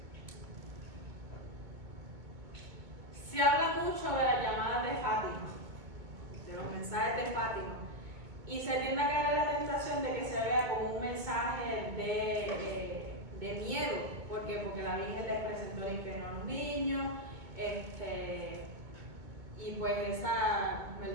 Se habla mucho de las llamadas de Fátima, de los mensajes de Fátima, y se tiende a caer en la tentación de que se vea como un mensaje de miedo. ¿Por qué? Porque la Virgen les presentó el infierno a los niños, y pues esa,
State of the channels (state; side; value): late; left; 2.2 ms